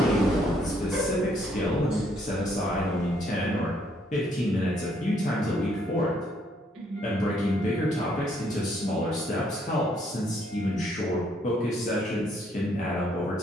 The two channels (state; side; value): normal; both; correlation 0.69